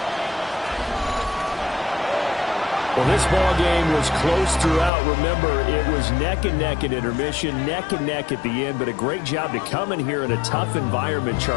Well, this ball game was close throughout. Remember, it was neck and neck at intermission, neck and neck at the end, but a great job to come in here in a tough environment,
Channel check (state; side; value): drops out; right; at 4.9 s